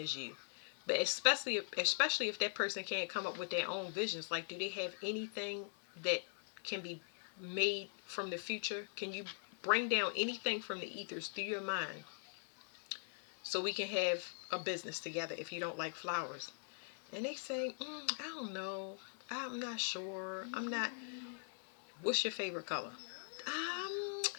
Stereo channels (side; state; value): right; silent; digital silence